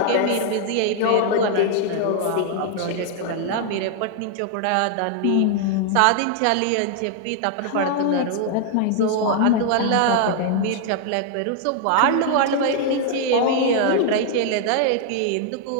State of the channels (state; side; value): different; both; correlation 0.00